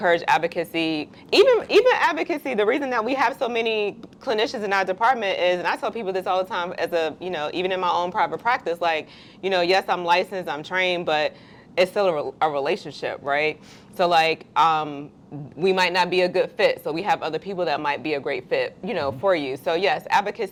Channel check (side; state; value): both; identical; correlation 1.00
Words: advocacy, even advocacy. The reason that we have so many clinicians in our department is, and I tell people this all the time as even in my own private practice, like, yes, I'm licensed, I'm trained, but it's still a relationship, right? So like, we might not be a good fit, so we have other people that might be a great fit, for you. So yes,